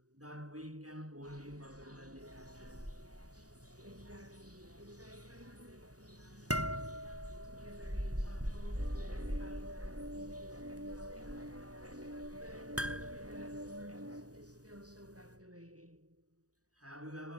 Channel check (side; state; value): left; late; 0.67 ms